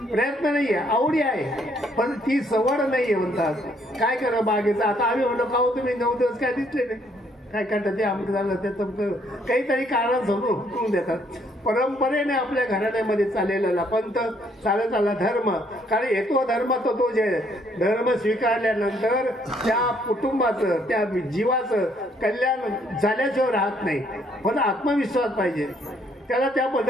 प्रयत्न नाही आहे, आवडी आहे, पण ती सवड नाही आहे म्हणतात. काय करा बागेचं. आता आम्ही म्हणलो का हो तुम्ही 9 दिवस काय दिसले नाही, काय करतात ते आमचं झालं त्याचं काहीतरी कारण समोर हुकून देतात. परंपरेने आपल्या घराण्यामध्ये चाललेला पंथ चालत आला धर्म. कारण येतो धर्म तो जे धर्म स्वीकारल्यानंतर त्या कुटुंबाचं त्या जीवाचं कल्याण झाल्याशिवाय राहत नाही. पण आत्मविश्वास पाहिजे, त्याला त्या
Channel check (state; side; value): normal; both; correlation 0.67